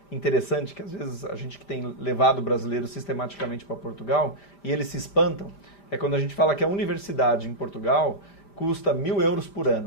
interessante que às vezes a gente que tem levado brasileiros sistematicamente para Portugal e eles se espantam, é quando a gente fala que a universidade em Portugal custa 1.000 euros por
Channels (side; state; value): right; late; 5.0 ms